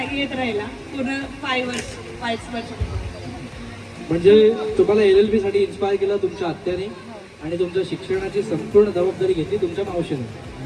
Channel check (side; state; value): both; identical; correlation 1.00